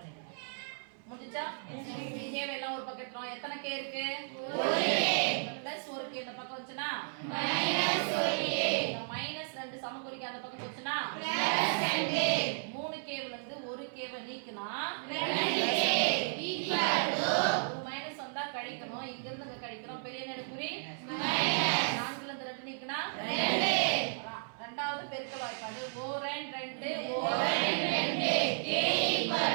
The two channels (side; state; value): left; silent; 55 dB below the other